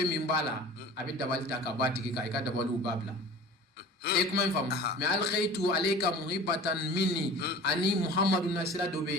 min b'a la a bɛ dabali ta ka bɔ a tigi kan i ka dabaliw b'a bila e kuma in faamu mais alqaitu alayka muhaibatan minni ani Muhammadu nasira dɔ bɛ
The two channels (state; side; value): normal; both; correlation 0.41